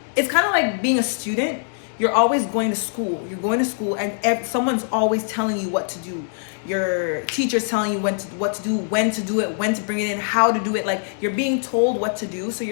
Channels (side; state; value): right; silent; digital silence